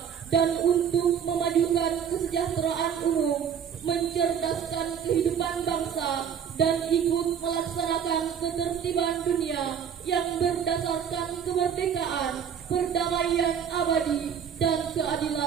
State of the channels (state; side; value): quieter; left; 7.9 dB